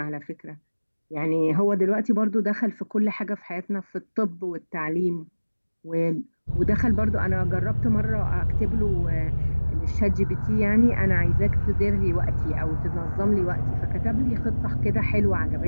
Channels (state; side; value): inverted; both; correlation -1.00